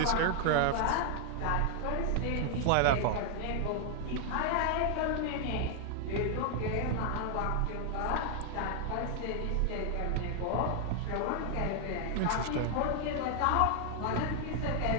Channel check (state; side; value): different; both; correlation 0.00